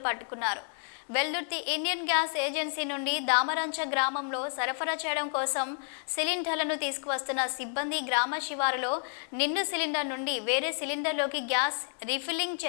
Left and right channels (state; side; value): silent; right; digital silence